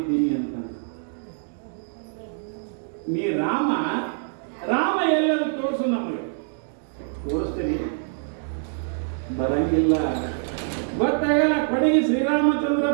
ಅಂತ. ನೀ ರಾಮ ಎಲ್ಲರೂ ತೋರಿಸು, ನಮಗೆ ತೋರಿಸ್ತೀನಿ. ಬರಂಗಿಲ್ಲ, ಗೊತ್ತಾಗಲ್ಲ. ಕಡೆಗೆ ಶ್ರೀರಾಮಚಂದ್ರ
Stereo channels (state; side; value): silent; left; digital silence